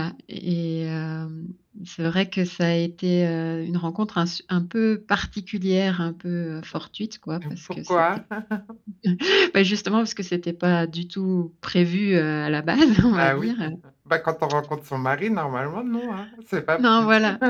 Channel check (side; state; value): both; identical; correlation 1.00